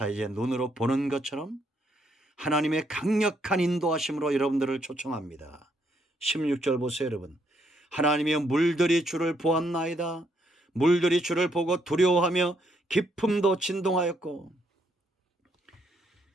이제 눈으로 보는 것처럼 하나님의 강력한 인도하심으로 여러분들을 초청합니다. 16절 보세요, 여러분. 하나님의 물들이 주를 보았나이다. 물들이 주를 보고 두려워하며 깊음도 진동하였고.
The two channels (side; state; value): both; normal; correlation 0.73